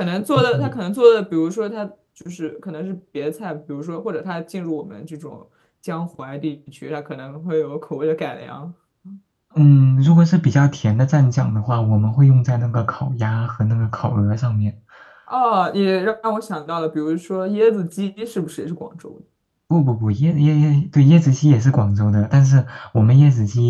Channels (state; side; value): identical; both; correlation 1.00